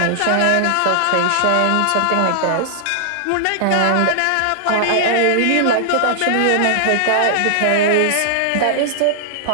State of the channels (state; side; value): different; both; correlation -0.01